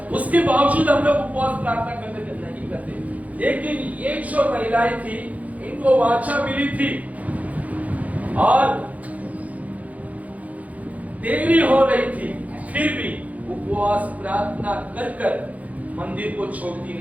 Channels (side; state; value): left; late; 0.071 ms